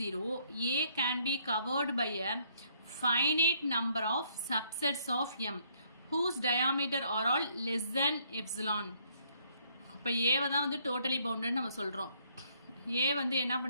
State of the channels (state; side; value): inverted; both; correlation -0.68